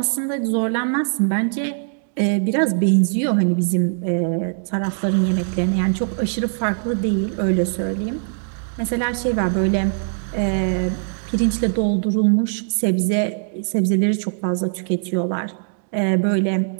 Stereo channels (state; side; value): silent; left; digital silence